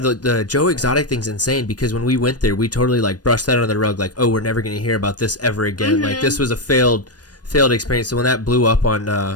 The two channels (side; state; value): right; late; 0.69 ms